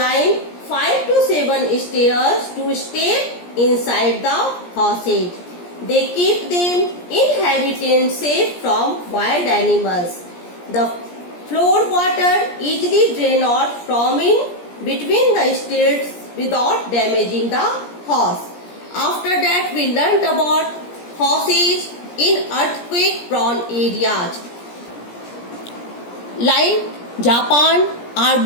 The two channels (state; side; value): late; right; 17 ms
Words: 5 to 7 stairs to step inside the houses. They keep them inhabitants safe from wild animals. The floor water easily drains out from in between the stilts without damaging the house. After that, we learnt about houses in earthquake-prone areas. Like Japan, are